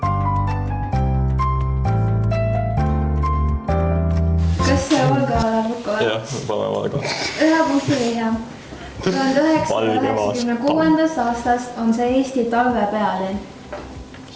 Kas see Valga lukku? Jah, pane Valga. 1 punkti vihja. 1996. aastast on see Eesti talve pealinn.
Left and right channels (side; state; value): both; identical; correlation 1.00